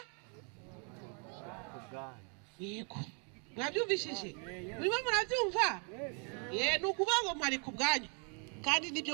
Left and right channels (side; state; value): left; quieter; 38.3 dB